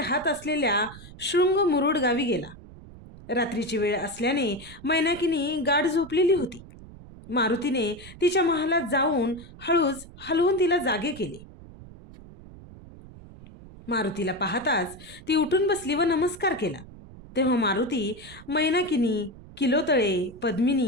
असलेल्या शृंग मुरुड गावी गेला। रात्रीची वेळ असल्याने मैनाकीनी गाढ झोपलेली होती। मारुतीने तिच्या महालात जाऊन हळूच हलवून तिला जागे केले। मारुतीला पाहताच ती उठून बसली व नमस्कार केला। तेव्हा मारुती मैनाकिनी, किलोतळे,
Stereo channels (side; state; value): right; noise; rumble, 18 dB below the sound